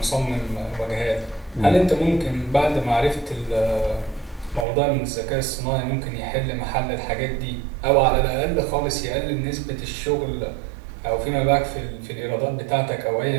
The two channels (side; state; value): left; drops out; at 4.7 s